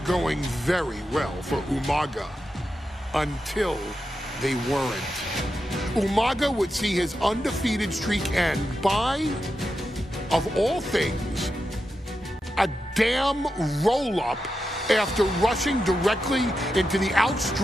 very well for Umaga. Until they weren't. Umaga would see his undefeated streak end by, of all things, a damn roll-up after rushing directly into the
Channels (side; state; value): both; normal; correlation 0.88